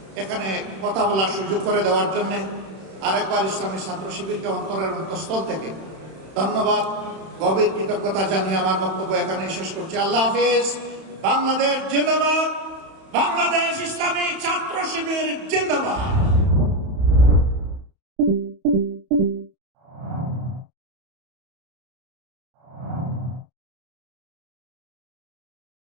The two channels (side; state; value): left; late; 31 ms